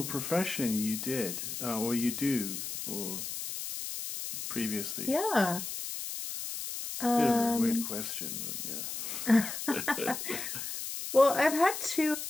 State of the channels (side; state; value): left; noise; hiss, 6 dB below the sound